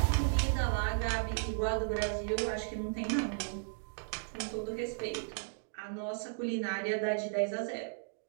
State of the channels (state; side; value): silent; left; digital silence